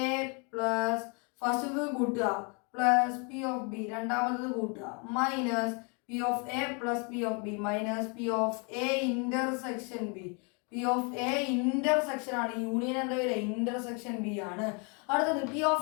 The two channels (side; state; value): right; quieter; 34.4 dB